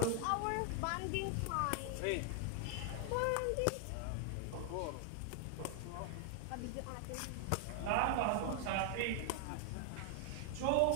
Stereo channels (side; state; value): both; different; correlation 0.00